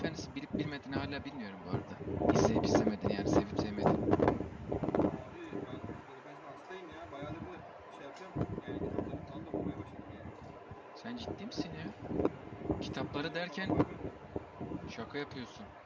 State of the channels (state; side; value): identical; both; correlation 1.00